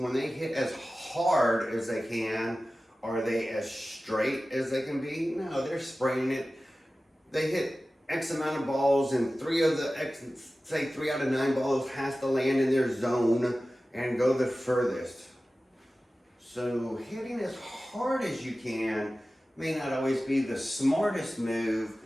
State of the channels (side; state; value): both; normal; correlation 0.96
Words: they hit as hard as they can, are they as straight as they can be? No, they're spraying it. They hit X amount of balls, and three out of 9 balls has to land in their zone and go the furthest. So hitting as hard as you can may not always be the smartest move,